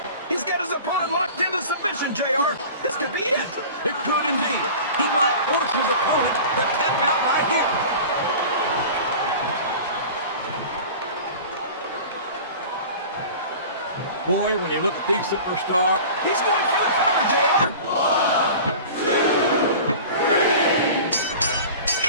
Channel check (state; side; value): inverted; both; correlation -0.38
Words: He's got his opponent locked into submission, JR. This could be it. It could indeed. He might force his opponent to tap out right here. Boy, when you look at these superstars, He's going for the cover, JR.